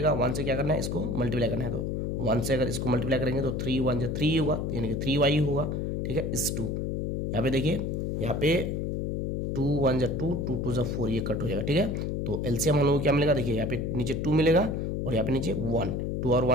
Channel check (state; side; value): noise; left; hum, 1 dB below the sound